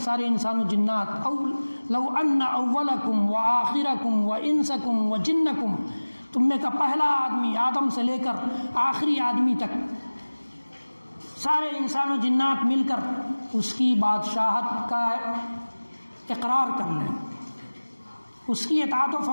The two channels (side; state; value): both; inverted; correlation -1.00